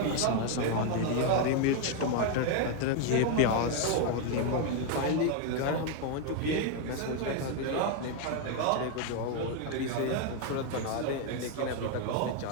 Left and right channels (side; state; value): both; different; correlation 0.01